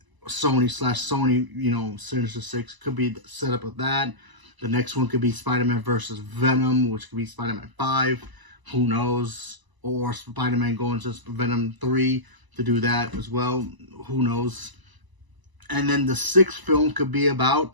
Sony Sinister Six. Could be the setup of that. The next one could be Spider-Man versus Venom, which could be Spider-Man 5. Who knows? Or Spider-Man going to Venom 3 to do that as well. Who knows? And then the 6th film could be about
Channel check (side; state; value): left; late; 1.0 ms